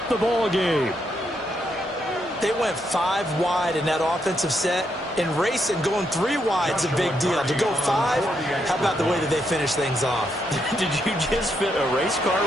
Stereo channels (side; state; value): both; normal; correlation 0.79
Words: the ball game. They went 5 wide in that offensive set. In racing, going 3 wide is a big deal. To go 5, how about the way that they finish things off? Did you just fit a race car